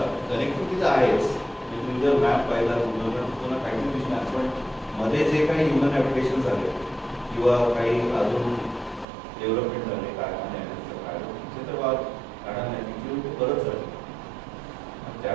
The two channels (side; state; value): left; drops out; at 9.1 s